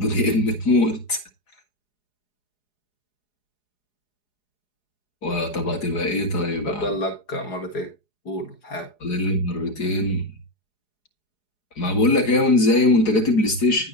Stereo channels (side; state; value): right; late; 4.8 ms